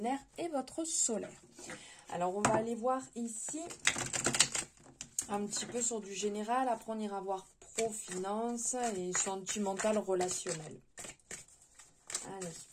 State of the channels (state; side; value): identical; both; correlation 1.00